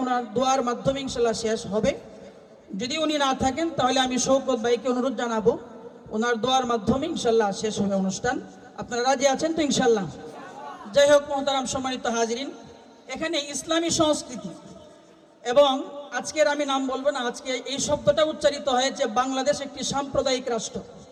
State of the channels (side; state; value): both; identical; correlation 1.00